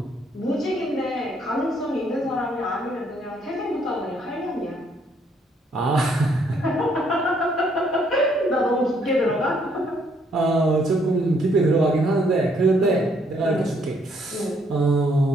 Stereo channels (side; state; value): both; normal; correlation 0.68